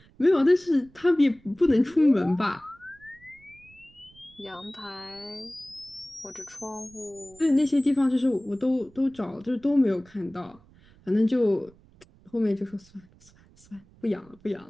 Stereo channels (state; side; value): noise; right; rumble, 27 dB below the sound